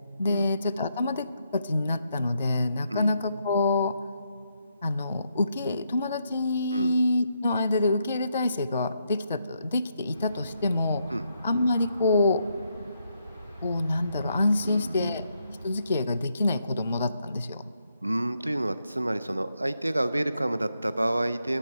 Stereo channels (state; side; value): inverted; both; correlation -0.78